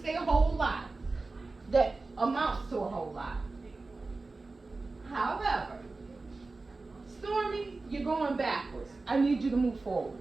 say a whole lot that amounts to a whole lot. However, Stormy, you're going backwards. I need you to move forward.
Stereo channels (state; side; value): quieter; left; 3.6 dB